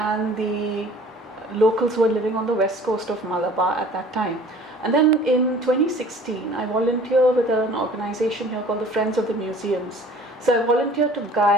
the locals who were living on the west coast of Malabar at that time. And then in 2016, I volunteered with an organization here called the Friends of the Museums. So I volunteered to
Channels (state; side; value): normal; both; correlation 0.49